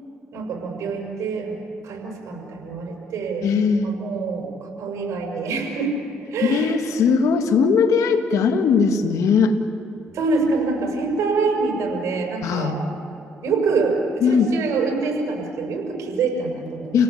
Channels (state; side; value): normal; both; correlation 0.62